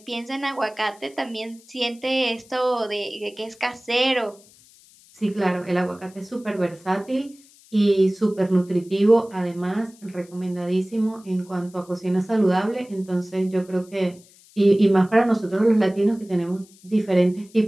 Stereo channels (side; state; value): left; noise; hiss, 26 dB below the sound